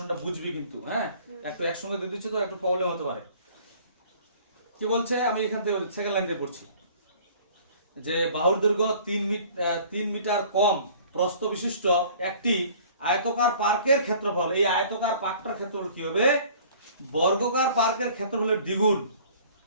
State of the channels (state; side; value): inverted; both; correlation -0.51